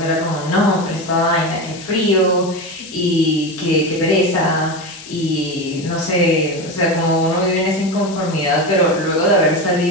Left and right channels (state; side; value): noise; left; hiss, 16 dB below the sound